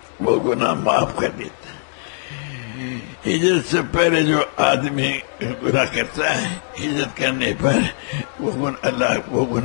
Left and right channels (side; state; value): right; silent; digital silence